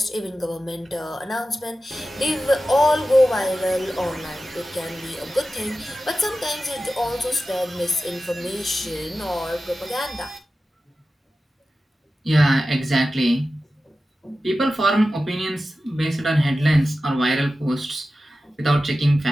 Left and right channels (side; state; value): both; normal; correlation 0.94